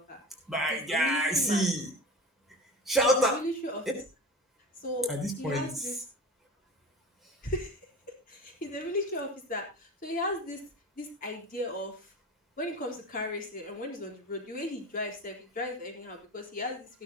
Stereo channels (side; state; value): both; normal; correlation 0.33